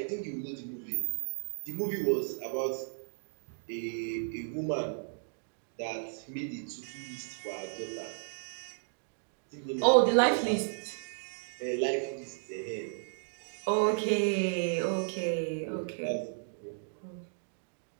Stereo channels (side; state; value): left; silent; digital silence